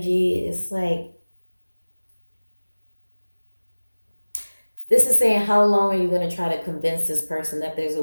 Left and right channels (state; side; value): inverted; both; correlation -1.00